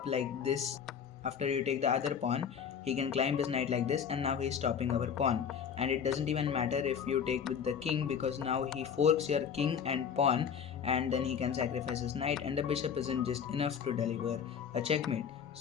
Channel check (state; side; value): quieter; right; 7.5 dB